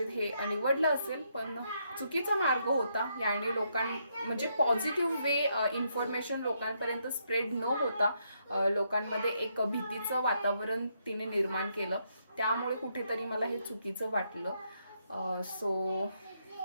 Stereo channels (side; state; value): both; inverted; correlation -0.76